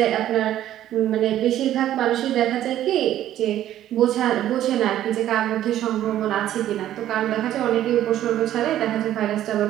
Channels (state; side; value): quieter; left; 12.3 dB